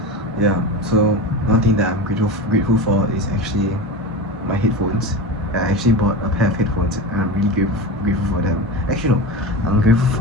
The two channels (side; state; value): both; normal; correlation 0.25